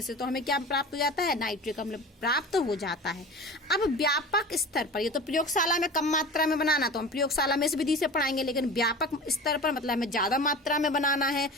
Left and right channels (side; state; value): both; normal; correlation 0.35